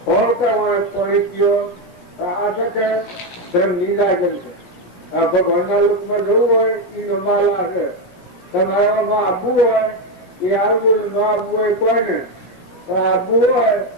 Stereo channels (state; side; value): late; right; 17 ms